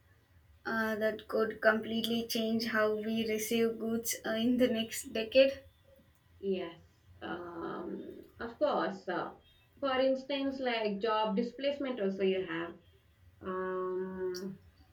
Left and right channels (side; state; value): both; identical; correlation 1.00